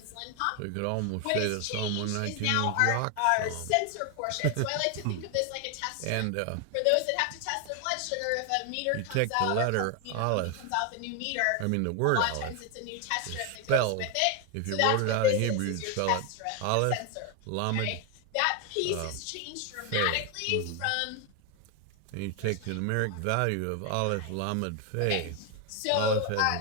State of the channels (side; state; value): both; different; correlation 0.01